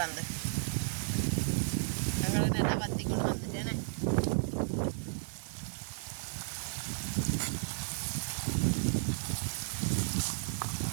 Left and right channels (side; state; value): left; silent; digital silence